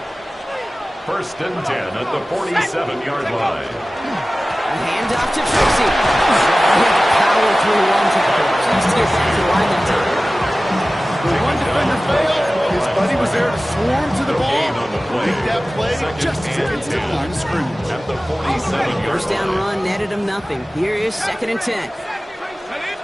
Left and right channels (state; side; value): normal; both; correlation 0.97